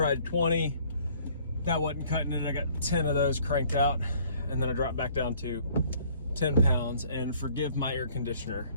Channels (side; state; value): both; inverted; correlation -0.58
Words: 20. That wasn't cutting it. I got 10 of those cranked out. And then I dropped back down to 10 pounds. And forgive my air conditioner,